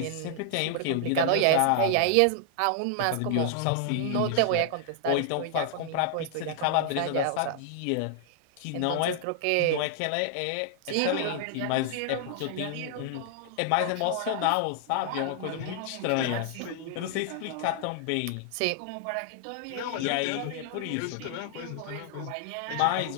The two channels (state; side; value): different; both; correlation -0.01